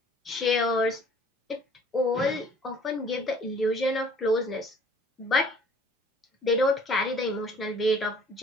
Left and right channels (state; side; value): normal; both; correlation 0.54